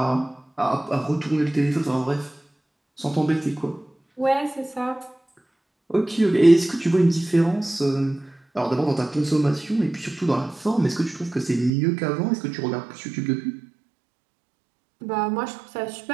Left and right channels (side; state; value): left; drops out; at 11.7 s